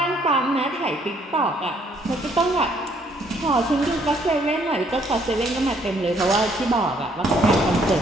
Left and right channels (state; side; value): normal; both; correlation 0.66